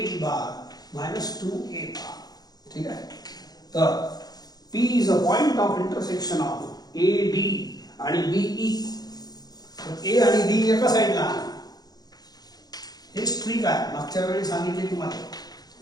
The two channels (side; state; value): right; late; 0.19 ms